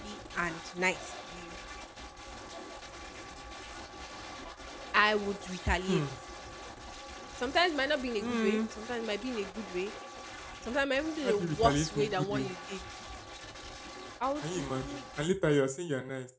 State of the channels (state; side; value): identical; both; correlation 1.00